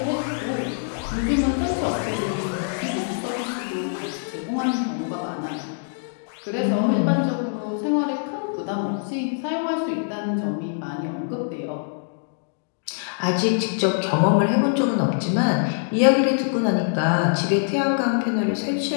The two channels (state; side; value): silent; right; digital silence